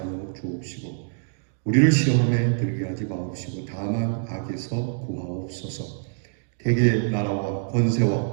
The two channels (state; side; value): silent; left; digital silence